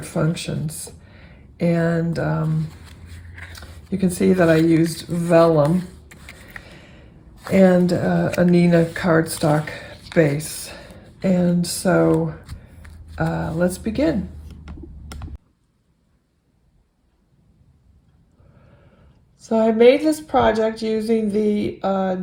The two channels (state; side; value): identical; both; correlation 1.00